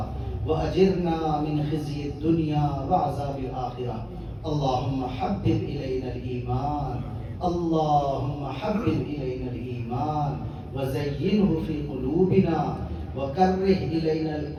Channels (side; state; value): both; identical; correlation 1.00